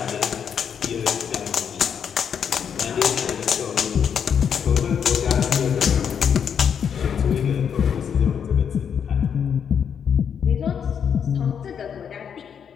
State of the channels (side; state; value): right; quieter; 7.6 dB